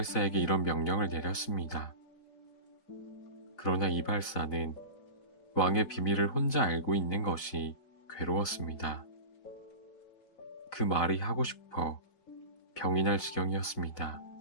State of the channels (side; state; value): right; late; 4.1 ms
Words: 이런 명령을 내렸습니다. 그러나 이발사는 왕의 비밀을 혼자 알고 있는 것이 괴로웠습니다. 그 말이 하고 싶어 병이 날 지경이었습니다.